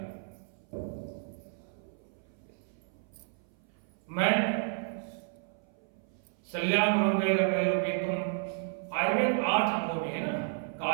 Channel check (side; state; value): left; silent; 56 dB below the other